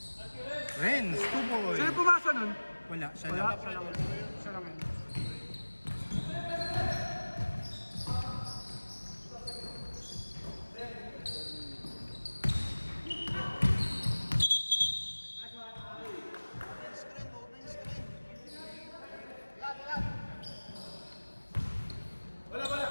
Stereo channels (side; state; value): both; inverted; correlation -1.00